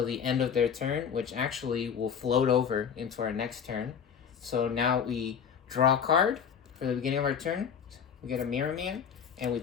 the end of their turn, which actually will float over into our next turn. So now we draw a card for the beginning of our turn. We get a Mirror Man, and we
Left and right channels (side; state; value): right; quieter; 7.4 dB